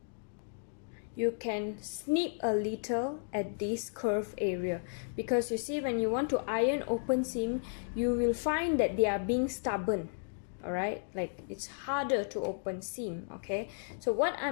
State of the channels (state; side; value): silent; right; digital silence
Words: you can snip a little at this curve area, because you see, when you want to iron open seam, you will find that they are being stubborn. Alright, like it's harder to open seam. Okay, so what